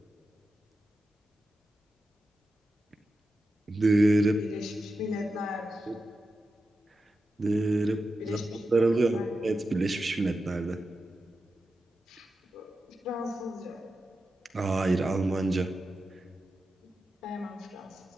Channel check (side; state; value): both; normal; correlation 0.90